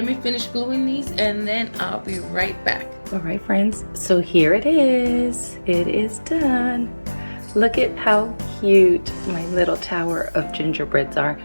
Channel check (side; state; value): both; inverted; correlation -1.00